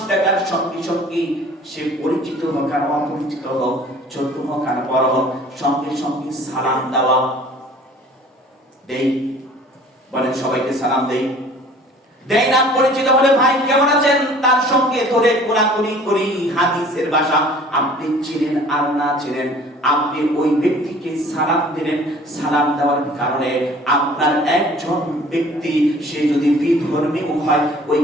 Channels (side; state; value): both; normal; correlation 0.49